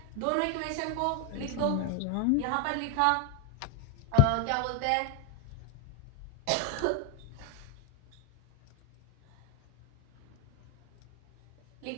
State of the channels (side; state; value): both; different; correlation 0.01